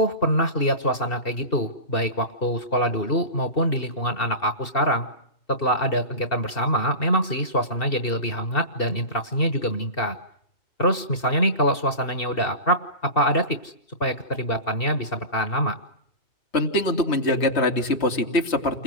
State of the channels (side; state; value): right; late; 2.7 ms